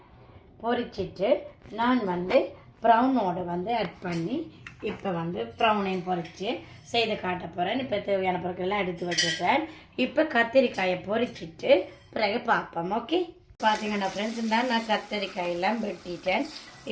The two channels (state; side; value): identical; both; correlation 1.00